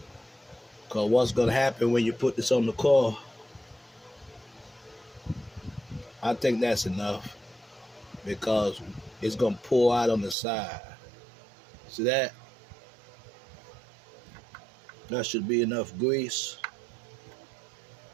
Cause what's gonna happen when you put this on the car, I think that's enough. Because it's gonna pour out on the side. See that? That should be enough grease.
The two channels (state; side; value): drops out; left; at 10.4 s